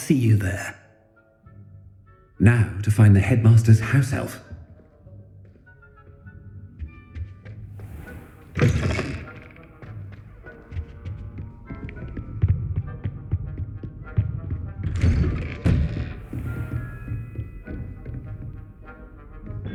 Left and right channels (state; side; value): identical; both; correlation 1.00